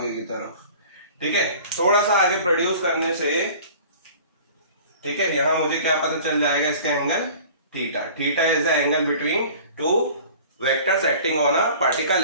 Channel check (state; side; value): inverted; both; correlation -0.45